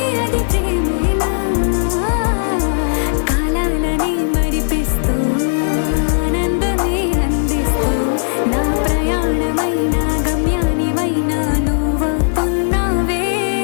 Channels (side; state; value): right; silent; digital silence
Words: అది ప్రేమేనా కాలాలని మరిపిస్తూ ఆనందమే అందిస్తూ నా ప్రయాణమైన గమ్యానివైనా నువ్వవుతున్నావే